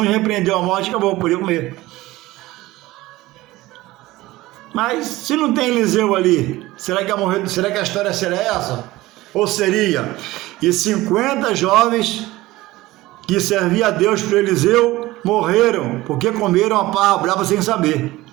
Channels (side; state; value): left; quieter; 18.2 dB